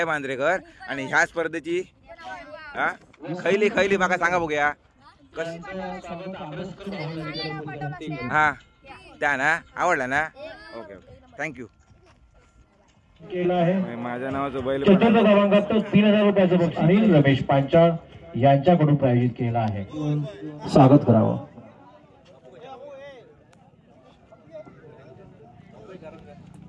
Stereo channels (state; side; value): identical; both; correlation 1.00